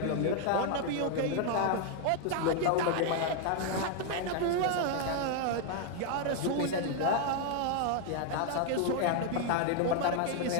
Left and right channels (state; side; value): different; both; correlation 0.00